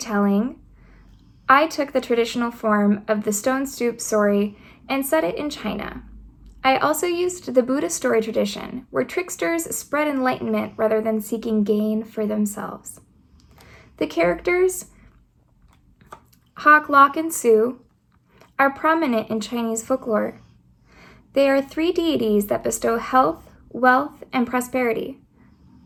I took the traditional form of the stone soup story and set it in China. I also used the Buddhist story tradition, where tricksters spread enlightenment rather than seeking gain for themselves. The characters, Hawk, Lock, and Sue, are prominent in Chinese folklore. They are three deities that bestow health, wealth, and prosperity.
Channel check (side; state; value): both; identical; correlation 1.00